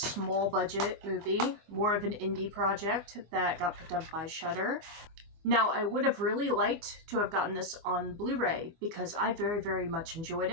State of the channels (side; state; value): left; late; 24 ms